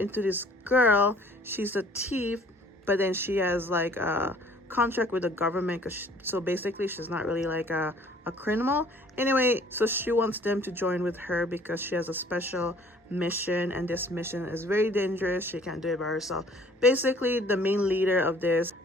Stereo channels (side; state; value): both; normal; correlation 0.55